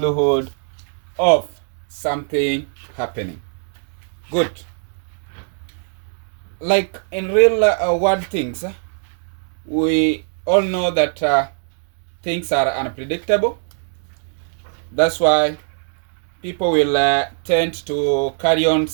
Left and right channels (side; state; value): left; silent; 65 dB below the other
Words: of something happening. Good. Like in real world things, we all know that things are unpredictable. That's why people will tend to carry on